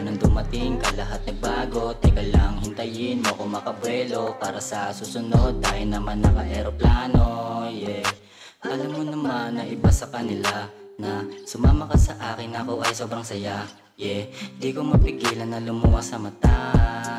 nang dumating ka, lahat nagbago. Teka lang, hintayin mo ko makabuelo para sa susunod, tayo naman naka-aeroplano, yeah. Alam mo naman na iba sa kanila, na sumama ka sa akin, ako ay sobrang saya, yeah. Di ko mapigilan na lumuha sa mata,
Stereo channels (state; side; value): identical; both; correlation 1.00